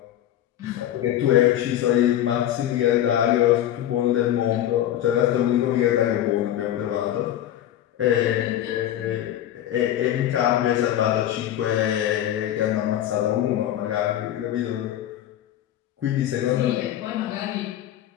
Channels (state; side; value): quieter; right; 12.0 dB